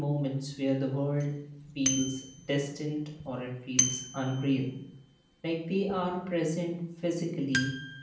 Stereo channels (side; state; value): both; identical; correlation 1.00